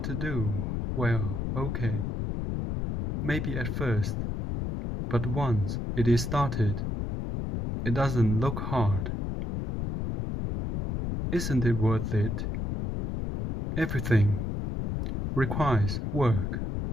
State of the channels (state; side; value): noise; left; rumble, 2 dB below the sound